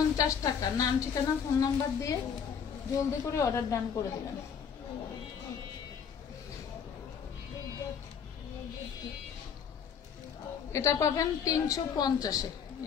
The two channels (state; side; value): quieter; right; 7.2 dB